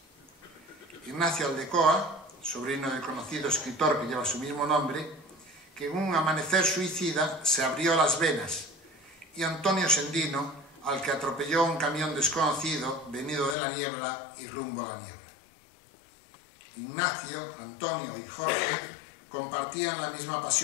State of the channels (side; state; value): right; drops out; at 13.6 s